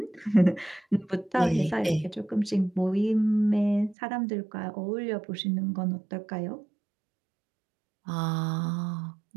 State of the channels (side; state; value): left; drops out; at 4.0 s